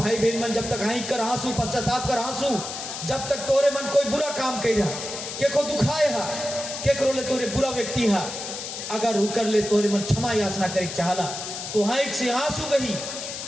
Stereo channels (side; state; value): left; noise; hiss, 7 dB below the sound